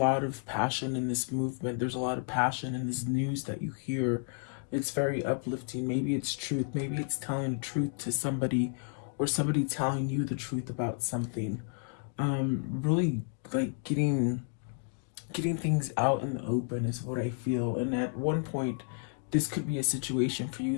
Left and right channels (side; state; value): right; silent; 57 dB below the other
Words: of passion in this movement, there's a lot of passion in this news that you hear. It's very uplifting. Maybe it's truth, maybe it's telling the truth to somebody, or somebody telling you the truth about something. Really like getting things out in the open is what I feel. And at one point, this could be a situation for